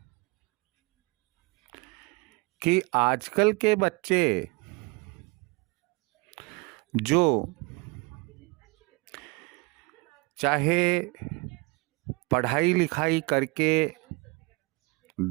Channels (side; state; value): left; quieter; 27.6 dB